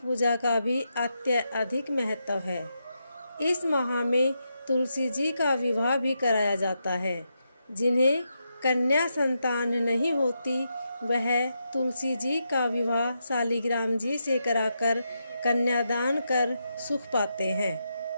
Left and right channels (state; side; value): inverted; both; correlation -0.84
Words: का भी अत्यधिक महत्व है। इस माह में तुलसी जी का विवाह भी कराया जाता है। जिन्हें कन्या संतान नहीं होती, वह तुलसी जी का विवाह शालिग्राम जी से कराकर कन्यादान कर सुख पाते हैं।